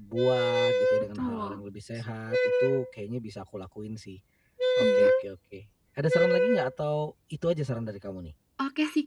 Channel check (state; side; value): identical; both; correlation 1.00